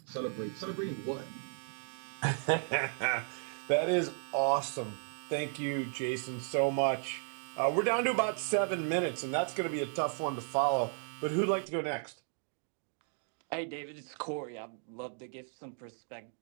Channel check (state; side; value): silent; left; 55 dB below the other